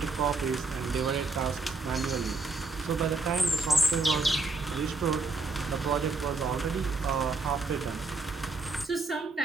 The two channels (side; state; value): left; quieter; 3.6 dB